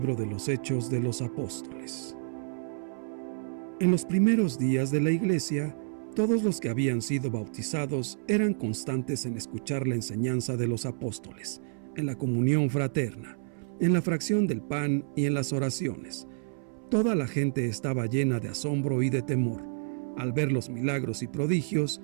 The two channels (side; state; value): left; silent; 58 dB below the other